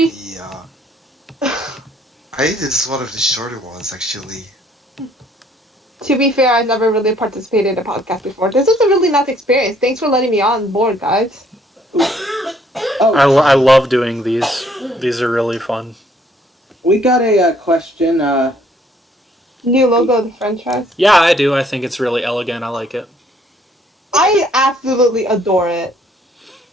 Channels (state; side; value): normal; both; correlation 0.64